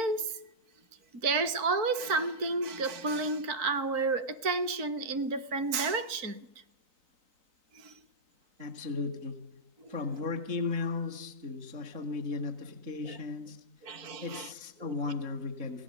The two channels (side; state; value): left; late; 3.9 ms